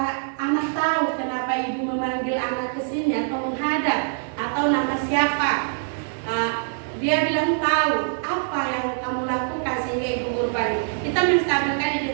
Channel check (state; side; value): silent; left; digital silence